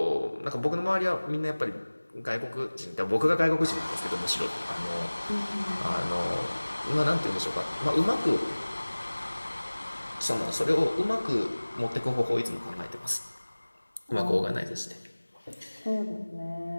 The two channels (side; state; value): both; inverted; correlation -1.00